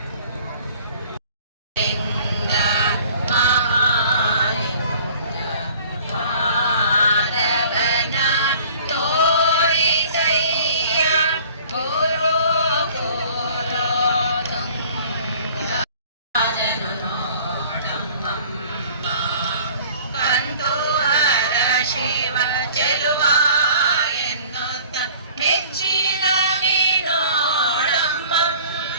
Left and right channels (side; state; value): both; inverted; correlation -0.49